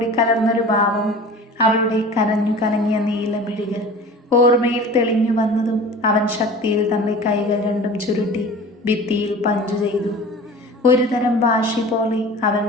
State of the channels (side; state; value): both; normal; correlation 0.39